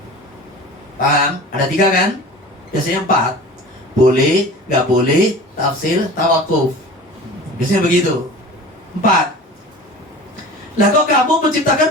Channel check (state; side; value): normal; both; correlation 0.38